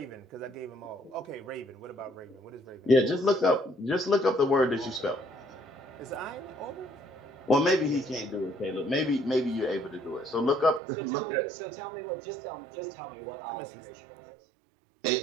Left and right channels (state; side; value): drops out; left; at 10.8 s